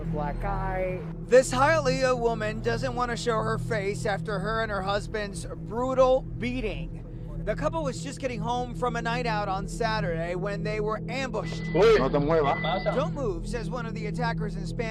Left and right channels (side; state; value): both; identical; correlation 1.00